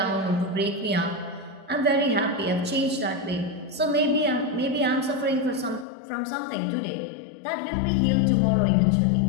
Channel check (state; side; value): drops out; right; at 5.9 s